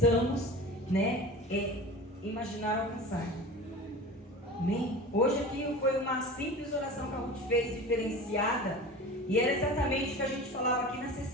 né, imaginar alcançar, amém? Hoje aqui foi uma simples oração que a Ruth fez, diferenciada, e era exatamente o que a gente falava aqui na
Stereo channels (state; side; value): normal; both; correlation 0.35